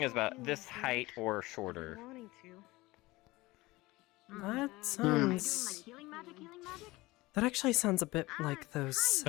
it was about this height or shorter. That sounds... That actually sounds a bit like those...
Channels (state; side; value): quieter; right; 20.5 dB